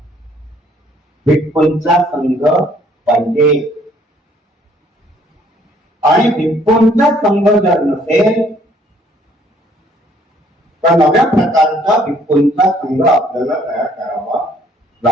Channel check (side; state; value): both; normal; correlation 0.62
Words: भिक्खूंचा संघ पाहिजे. आणि भिक्खूंचा संघ जर नसेल तर नव्या प्रकारचा भिक्खूंचा संघ आपल्याला तयार करावा